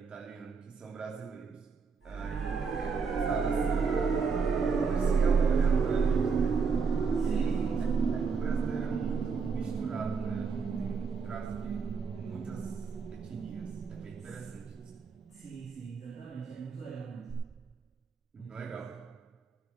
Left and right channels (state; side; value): quieter; left; 5.3 dB